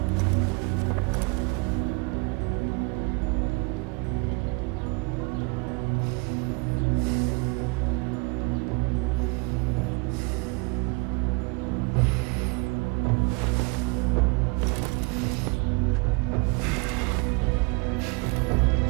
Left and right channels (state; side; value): quieter; left; 30.8 dB